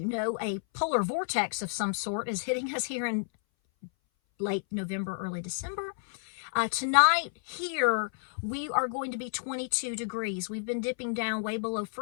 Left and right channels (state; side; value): silent; right; 57 dB below the other